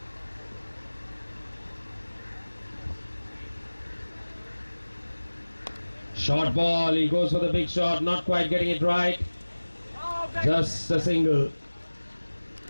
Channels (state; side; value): inverted; both; correlation -1.00